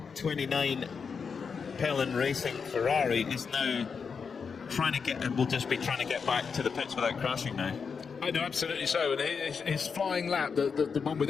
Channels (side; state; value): right; quieter; 5.8 dB